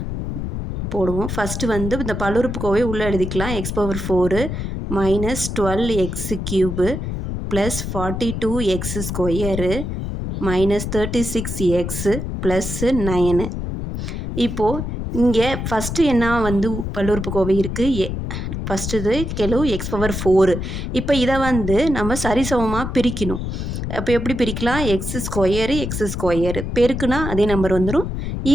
போடுவோம். ஃபஸ்ட்டு வந்து இந்த பல்லுறுப்புக்கோவை உள்ளே எழுதிக்கலாம். x⁴ minus 12x³ plus 42x² minus 36x plus 9. இப்போது இங்கே ஃபஸ்ட்டு என்ன வந்து பல்லுறுப்புக்கோவை இருக்குது? ஃபஸ்ட்டு இது கெழு x⁴. இப்போ இதை வந்து நம்ம சரிசமமாக பிரிக்கணும். அப்போ எப்படி பிரிக்கலாம்? x² பெருக்குனா அதே நம்பர் வந்துடும்.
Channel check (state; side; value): noise; left; rumble, 4 dB below the sound